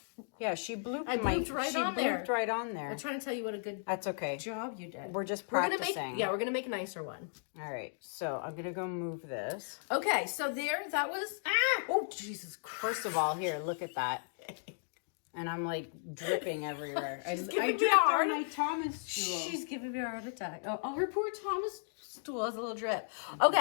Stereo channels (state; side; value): silent; right; digital silence